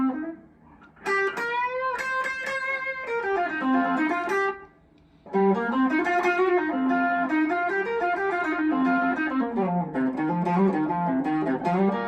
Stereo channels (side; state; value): both; identical; correlation 1.00